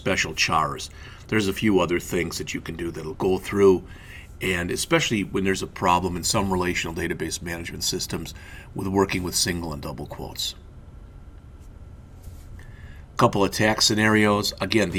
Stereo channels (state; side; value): identical; both; correlation 1.00